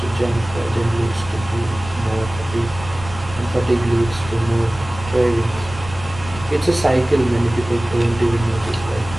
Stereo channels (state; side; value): noise; left; rumble, 13 dB below the sound